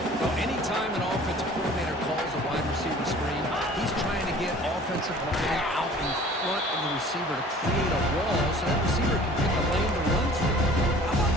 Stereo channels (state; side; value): normal; both; correlation 0.48